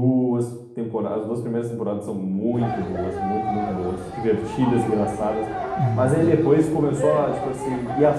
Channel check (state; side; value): identical; both; correlation 1.00